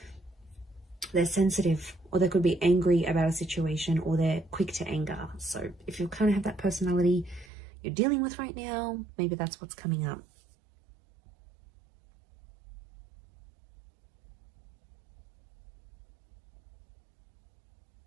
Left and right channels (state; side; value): drops out; left; at 7.5 s